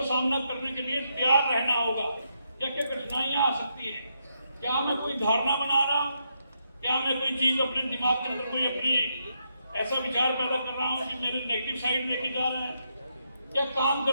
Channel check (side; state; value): both; inverted; correlation -0.80